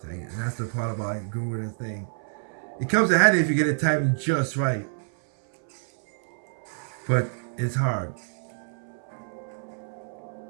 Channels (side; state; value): left; silent; 60 dB below the other